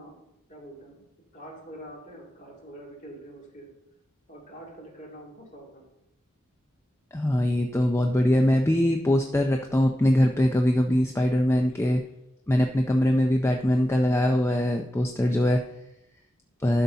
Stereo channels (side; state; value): both; normal; correlation 0.92